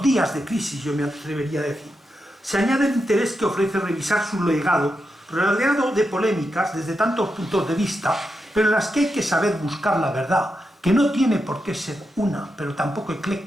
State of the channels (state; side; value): normal; both; correlation 0.86